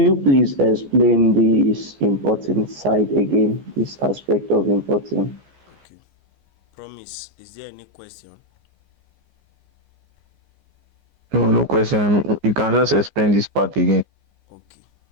please explain this importing side again, this aspect of importing? Okay. Promise, is there any question? No, no question. You can just explain this part again. Okay.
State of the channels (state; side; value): late; left; 14 ms